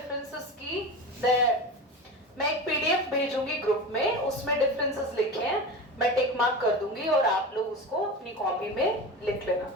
की मैं एक पीडीएफ भेजूंगी ग्रुप में, उसमें डिफरेंसेस लिखे हैं, मैं टिक मार्क कर दूंगी और आप लोग उसको अपनी कॉपी में लिख लेना,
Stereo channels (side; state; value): both; normal; correlation 0.28